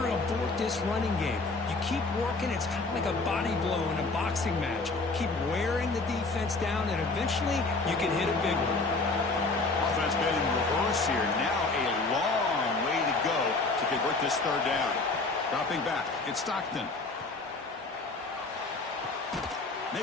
abort this running game. You keep working. It's kind of like a body blow in a boxing match. Keep wearing the defense down, and eventually you can hit a big one. Offense been in reverse here. Now a long way to go to convert this third down. Dropping back. It's Stockton.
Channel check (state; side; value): quieter; right; 3.5 dB